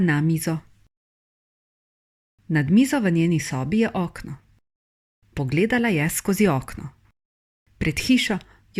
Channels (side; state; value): both; identical; correlation 1.00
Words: mizo. Nad mizo v njeni sobi je okno. Pogledala je skozi okno. Pred hišo